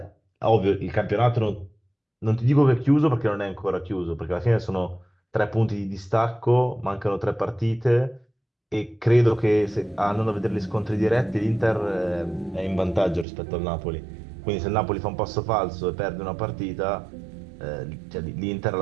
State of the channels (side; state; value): left; drops out; at 13.2 s